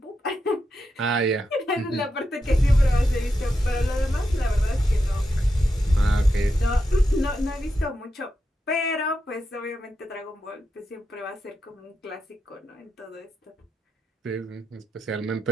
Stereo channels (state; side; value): normal; both; correlation 0.86